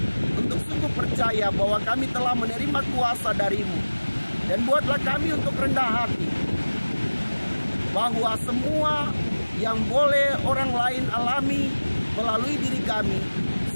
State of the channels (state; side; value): inverted; both; correlation -1.00